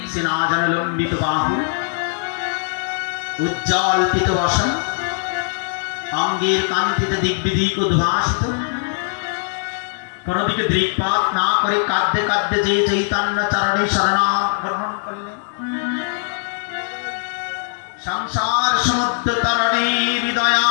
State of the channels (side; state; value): right; silent; digital silence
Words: আজান লম্বিত বাহু, উজ্জ্বল পিত বসন, অঙ্গের কান্তিতে দিগ্বিদিক উদ্ভাসিত, কোনদিকে দৃকপাত না করে কাঁদতে কাঁদতে যে চৈতন্য চরণে শরণাগত গ্রহণ করলেন। সংসার সমুদ্র তরণে